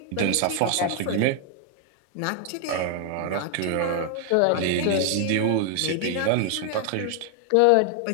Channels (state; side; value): different; both; correlation 0.00